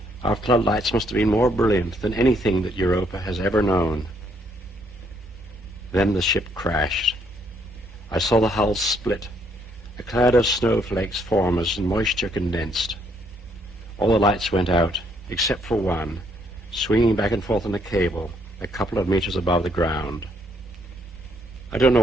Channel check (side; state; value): both; normal; correlation 0.70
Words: Our floodlights must have been more brilliant than anything that Europa has ever known. Then the ship crashed. I saw the hull split, a cloud of snowflakes form as moisture condensed. All the lights went out, except for one, swinging back and forth on a cable a couple of meters above the ground. I don't